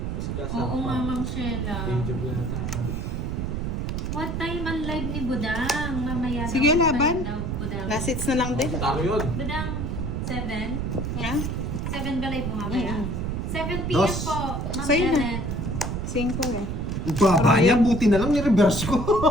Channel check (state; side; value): noise; right; rumble, 2 dB below the sound